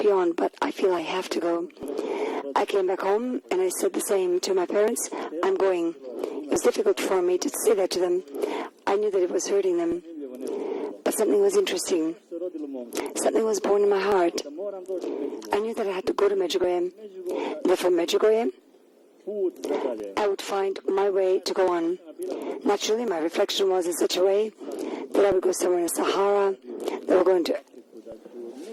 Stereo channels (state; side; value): identical; both; correlation 1.00